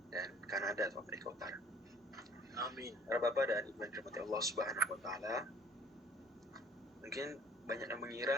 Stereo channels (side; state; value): both; normal; correlation 0.54